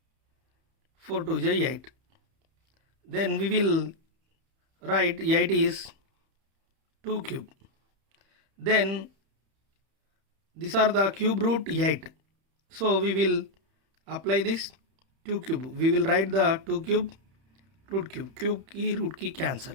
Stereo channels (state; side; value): late; left; 31 ms